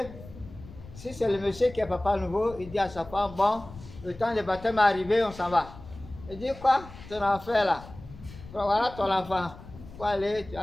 si c'est le monsieur qui est Papa Nouveau, il dit à sa femme, bon, le temps du baptême est arrivé, on s'en va. Il dit quoi? Ton enfant là. Voilà ton enfant. Faut aller, tu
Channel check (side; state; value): left; noise; rumble, 17 dB below the sound